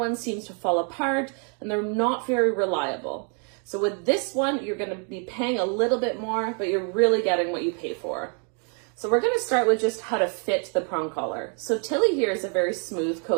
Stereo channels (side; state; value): left; quieter; 39.9 dB